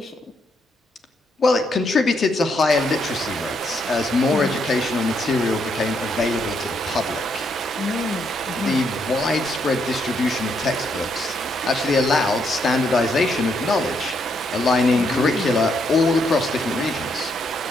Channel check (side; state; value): both; normal; correlation 0.76